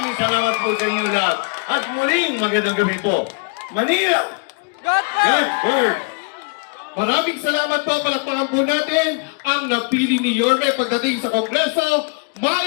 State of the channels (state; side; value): quieter; right; 32.8 dB